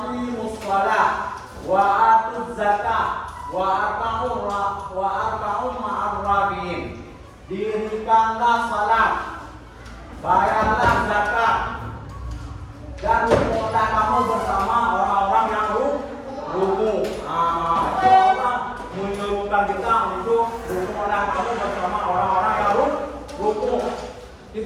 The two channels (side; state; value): both; identical; correlation 1.00